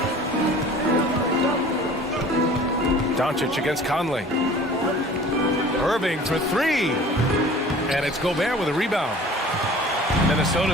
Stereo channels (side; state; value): both; normal; correlation 0.45